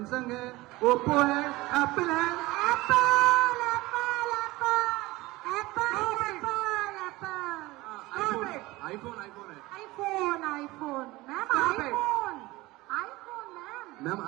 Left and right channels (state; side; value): quieter; left; 20.0 dB